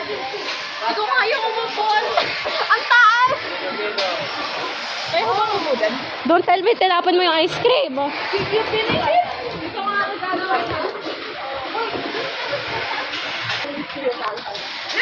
Ito nga yung umupon. Ang taas! Kaya ko bang umudan? Don't tell me, tinapon mo yung ice cream. Yung finish it? Ito nga ang gagawin na.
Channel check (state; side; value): identical; both; correlation 1.00